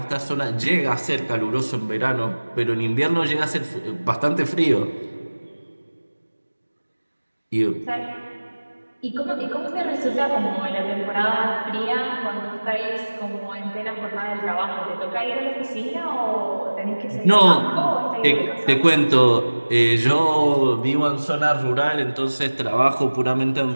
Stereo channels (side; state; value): both; inverted; correlation -1.00